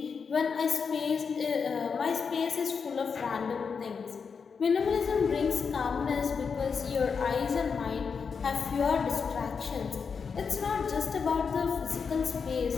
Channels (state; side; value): quieter; right; 5.8 dB